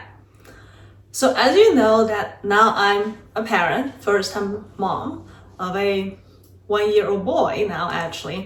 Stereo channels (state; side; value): identical; both; correlation 1.00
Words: So as you know that now I'm a parent, first-time mom of a 1-year-old boy now